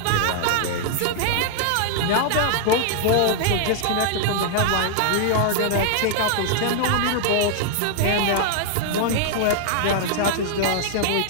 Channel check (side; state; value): both; different; correlation -0.01